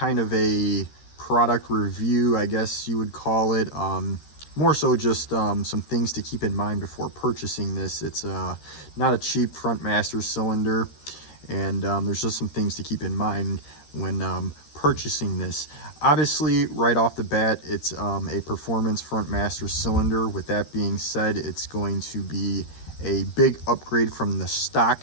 of a product review, I guess you would call it. More so just some things to keep in mind before purchasing this. It's not a cheap front master cylinder, and there's just some things to keep in mind when purchasing this. Obviously, right off the bat, it's a performance front master cylinder. With that being said, it's going to be a big upgrade from the stock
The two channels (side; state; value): right; late; 13 ms